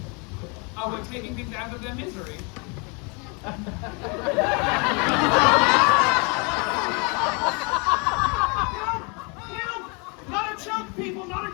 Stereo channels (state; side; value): quieter; right; 32.4 dB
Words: Oh, we're taking things out of their misery. Not a joke, people, not a